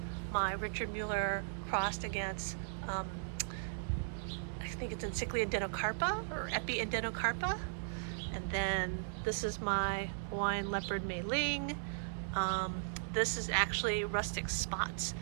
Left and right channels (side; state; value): left; silent; digital silence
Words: my Richard Mueller crossed against I think it's Encyclia denocarpa or Epi denocarpa, and then this is my Hawaiian leopard Mei Ling. This is actually rustic spots,